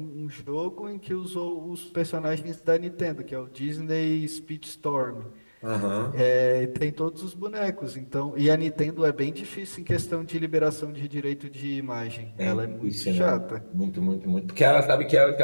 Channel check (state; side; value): inverted; both; correlation -1.00